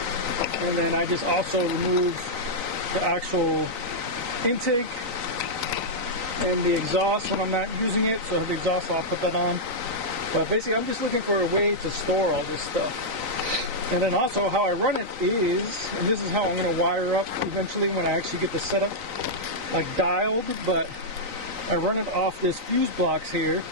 and then I just also remove the actual intake and the exhaust when I'm not using it. So the exhaust, I'll put that on. But basically I'm just looking for a way to store all this stuff. And then also how I run it is, and this is how I'm going to wire up eventually when I actually get the setup like dialed, but I run it off this fuse blocks here,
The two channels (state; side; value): late; left; 3.9 ms